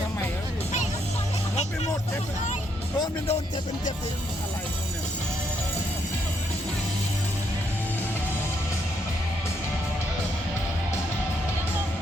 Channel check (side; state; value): both; normal; correlation 0.75